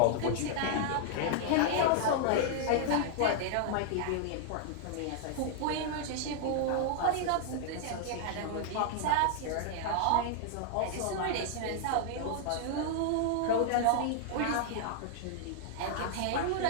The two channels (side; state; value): both; different; correlation -0.01